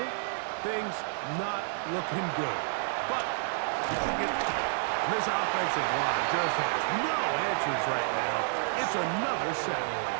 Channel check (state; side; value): silent; left; 58 dB below the other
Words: Things not looking good. But this offensive line just has no answers right now. It's another sack.